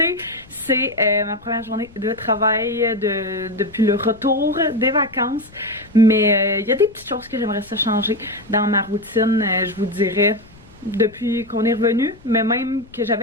c'est ma première journée de travail depuis le retour des vacances. Mais il y a des petites choses que j'aimerais ça changer dans ma routine, je vous dirais, depuis qu'on est revenu, mais même que j'avais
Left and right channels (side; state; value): left; noise; rumble, 24 dB below the sound